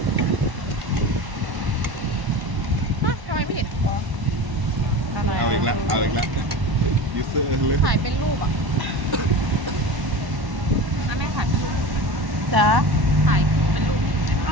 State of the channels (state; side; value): late; left; 1.1 ms